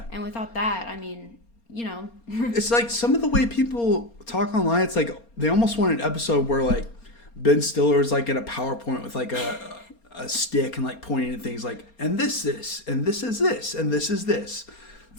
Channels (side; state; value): right; late; 4.3 ms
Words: And without that, I mean, you know. It's like some of the way people talk online, it's like they almost want an episode where like Ben Stiller's like in a PowerPoint with like a stick and like pointing at things like, and this, and this is this, and this is this.